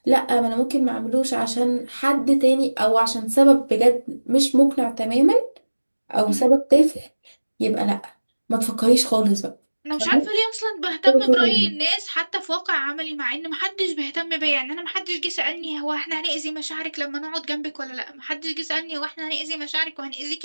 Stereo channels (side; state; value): both; inverted; correlation -1.00